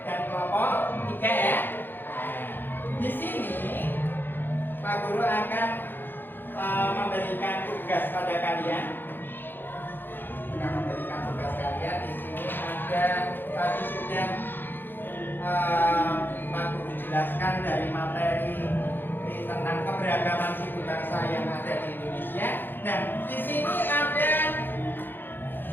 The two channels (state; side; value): late; right; 0.096 ms